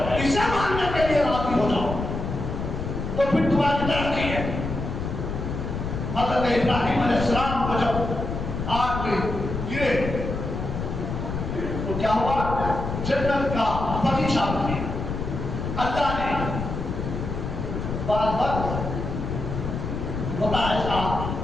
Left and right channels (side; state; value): left; noise; rumble, 4 dB below the sound